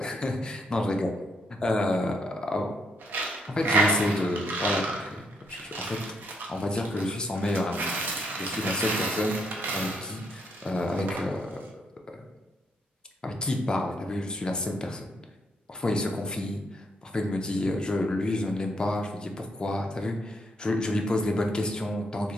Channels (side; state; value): both; normal; correlation 0.75